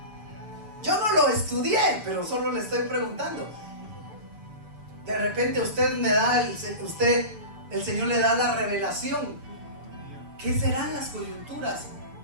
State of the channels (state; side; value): late; left; 7.0 ms